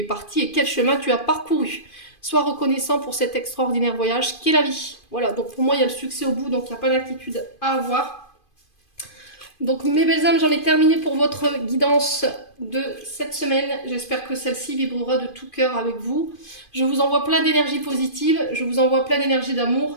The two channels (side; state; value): right; late; 2.5 ms